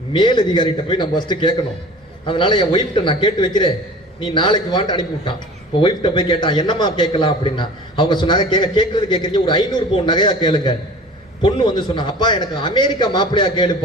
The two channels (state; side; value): normal; both; correlation 0.41